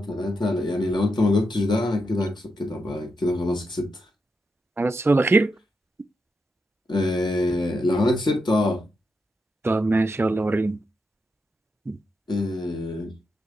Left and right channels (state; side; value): normal; both; correlation 0.85